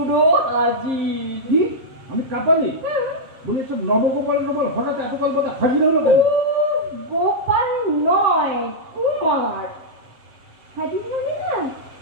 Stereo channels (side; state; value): left; late; 7.6 ms